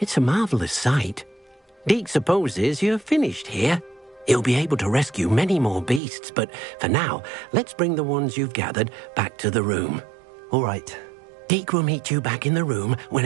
a marvellous sight. Deke supposes you're finished here. He'll be able to rescue many more beasts, but for now, let's bring the ones you've gathered back to the room. All right. Deke will meet you back in the room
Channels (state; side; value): drops out; left; at 6.0 s